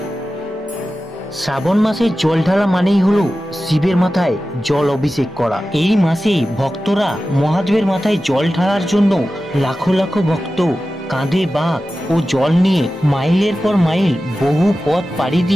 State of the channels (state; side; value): normal; both; correlation 0.94